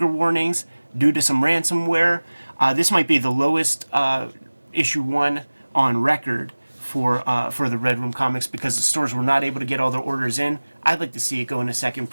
Warnings due to some ransomware. This might be the lowest issue 1 on record for the Red Room comics because the stores were not able to get all their orders in. I'd like to see it go into second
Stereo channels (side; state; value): both; inverted; correlation -1.00